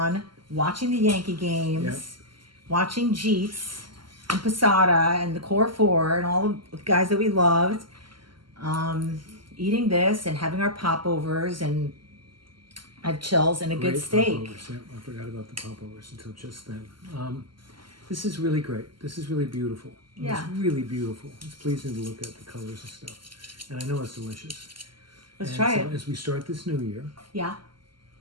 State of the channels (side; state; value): left; late; 0.72 ms